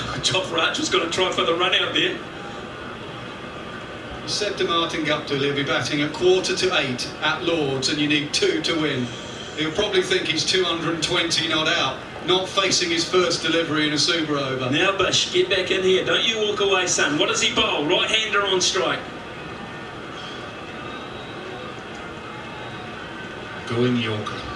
Jofra Archer's going to try for the run out there. He said to Martin Guptill he'll be batting at 7:45 at Lord's and you need 2 to win. He'll probably think he's 220 not out, not facing his first delivery in a super over. Now Bush, get back in here. Don't you walk away, son. What does he bowl? Right-hander on strike. Going Yorker.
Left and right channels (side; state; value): both; identical; correlation 1.00